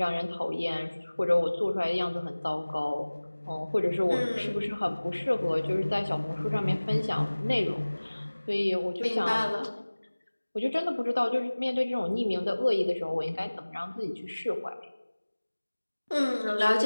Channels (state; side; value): inverted; both; correlation -1.00